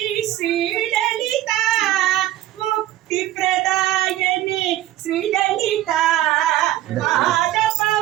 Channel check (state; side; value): quieter; left; 14.3 dB